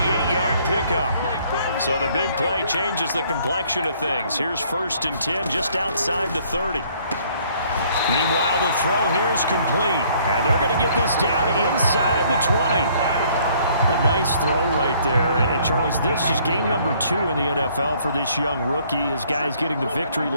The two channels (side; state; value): both; inverted; correlation -0.62